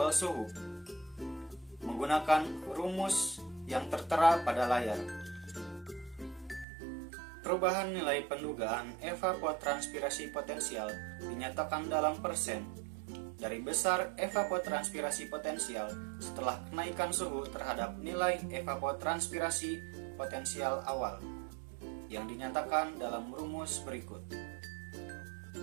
suhu menggunakan rumus yang tertera pada layar. Perubahan nilai pendugaan evapotranspirasi potensial dinyatakan dalam persen dari besar evapotranspirasi potensial setelah kenaikan suhu terhadap nilai evapotranspirasi potensial awal yang dinyatakan dalam rumus berikut.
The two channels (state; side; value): drops out; left; at 6.7 s